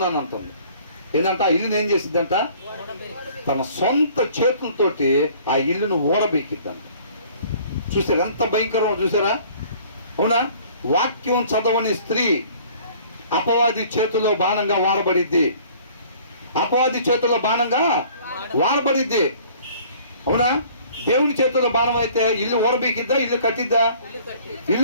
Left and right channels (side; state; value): both; inverted; correlation -0.53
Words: అని అంటుంది. ఏంటంటే ఆ ఇల్లుని ఏం చేసిద్దంట, తన సొంత చేతులతోటి ఆ ఇల్లును ఓడబెక్కిద్దంట. చూసారా ఎంత భయంకరం, చూసారా? అవునా? వాక్యం చదవని స్త్రీ అపవాది చేతిలో బాణంగా వాడబడిద్ది, అపవాది చేతుల్లో బాణంగా వాడబడిద్ది. అవునా? దేవుని చేతుల్లో బాణం అయితే ఇల్లు ఓడబీకిద్దా, ఇల్లు కట్టిద్దా?